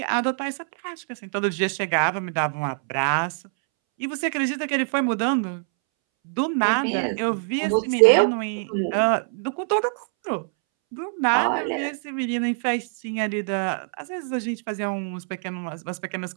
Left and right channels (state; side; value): silent; left; 62 dB below the other